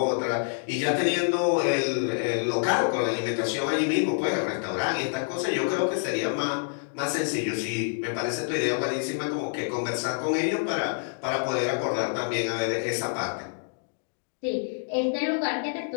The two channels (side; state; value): right; silent; digital silence